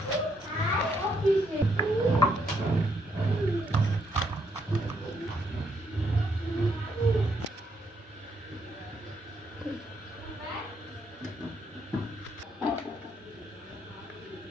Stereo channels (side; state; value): both; normal; correlation 0.75